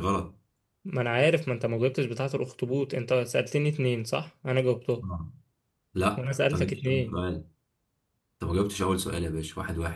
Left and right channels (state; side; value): identical; both; correlation 1.00